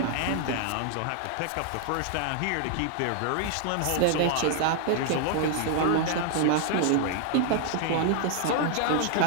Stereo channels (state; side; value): different; both; correlation 0.00